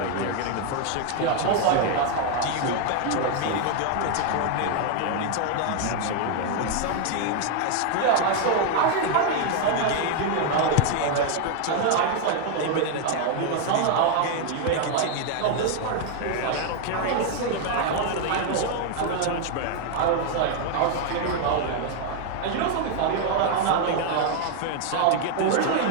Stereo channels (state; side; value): different; both; correlation 0.01